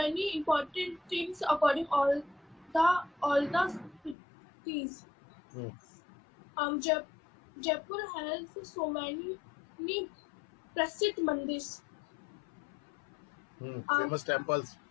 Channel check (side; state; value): right; drops out; at 4.2 s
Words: important things according all the cities. Jaipur has so many प्रसिद्ध मंदिर. Famous temples.